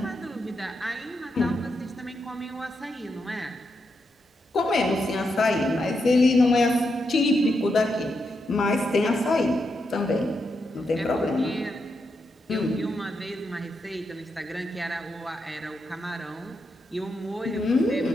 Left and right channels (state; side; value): normal; both; correlation 0.84